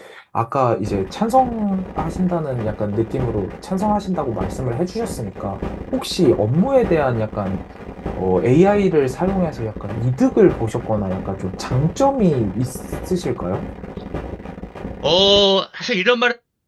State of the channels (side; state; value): both; identical; correlation 1.00